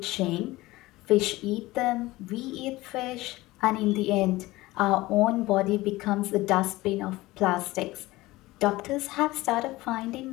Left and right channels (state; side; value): quieter; right; 19.1 dB